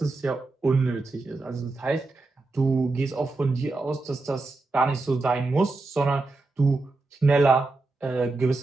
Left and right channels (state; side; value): quieter; left; 3.4 dB